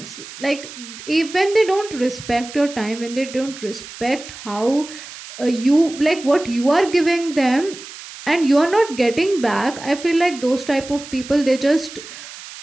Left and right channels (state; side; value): noise; right; hiss, 14 dB below the sound